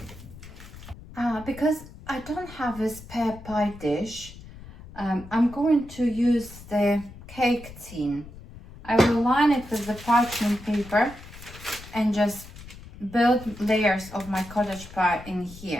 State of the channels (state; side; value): noise; left; rumble, 16 dB below the sound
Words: Because I don't have a spare pie dish, I'm going to use the cake tin. I will line it with the parchment paper and just build layers of my cottage pie in